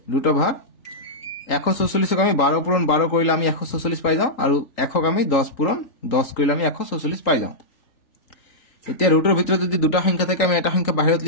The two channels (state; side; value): late; right; 3.8 ms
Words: ৰুট ওভাৰ 144 ক আমি 12 পূৰণ 12 কৰিলে আমি 144 পাই যাও আৰু 100 ক আমি 10 পূৰণ 10 কৰিলে আমি 144 পাই যাও এতিয়া ৰুটৰ ভিতৰত যদি দুটা সংখ্যা থাকে আমি এটা সংখ্যা বাহিৰত